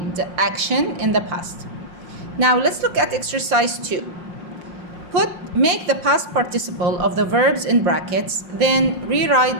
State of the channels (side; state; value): left; late; 5.6 ms